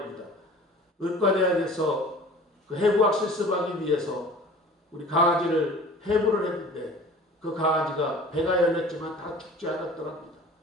의과대학에서 그 해부학 실습하기 위해서 우리 강아지를 해부를 했는데 그 강아지가 배가 열렸지만 다 죽지 않았더랍니다.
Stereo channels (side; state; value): both; normal; correlation 0.44